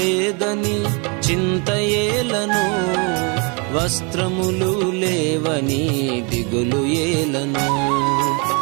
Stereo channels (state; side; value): quieter; left; 32.9 dB